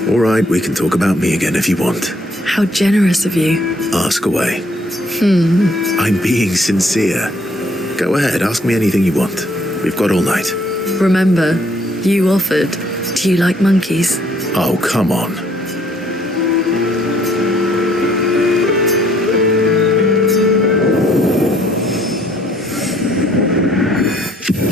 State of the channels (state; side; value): normal; both; correlation 0.64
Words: All right, we can talk about me again if you want. How generous of you. Ask away. I'm being sincere. Go ahead, ask me anything you want. We've got all night. Remember, you offered. Do you like monkeys? Oh, come on.